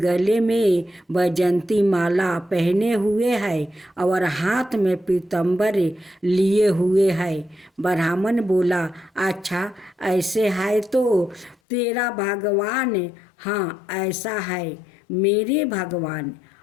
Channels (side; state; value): right; drops out; at 11.6 s